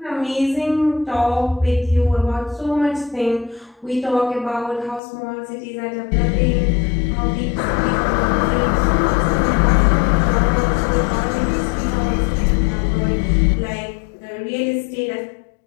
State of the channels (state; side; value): drops out; right; at 5.0 s